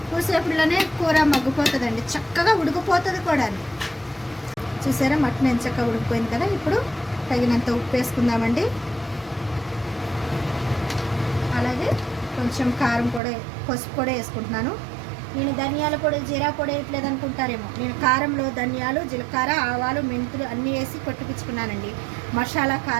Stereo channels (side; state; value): left; drops out; at 13.2 s